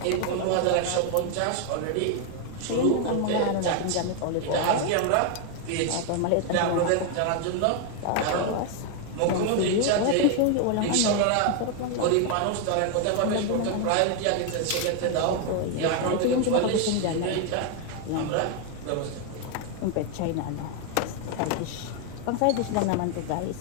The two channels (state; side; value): different; both; correlation 0.01